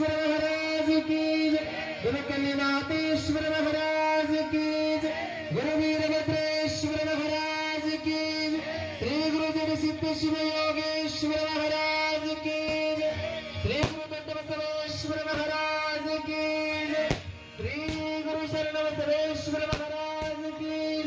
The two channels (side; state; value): both; identical; correlation 1.00